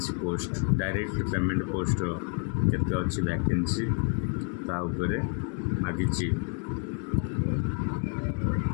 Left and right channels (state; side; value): quieter; right; 38.0 dB